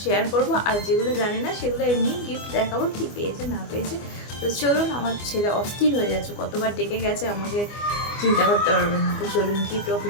শেয়ার করব, আর যেগুলো জানি না সেগুলো এমনি গিফট দেখাবো, কী পেয়েছে না পেয়েছে। তো চলুন, আমার ছেলে অস্থির হয়ে যাচ্ছে, কতবার ডেকে গেছে আমাকে, চিন্তা করতে পারবেন না। তো চলুন গিফট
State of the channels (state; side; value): late; right; 24 ms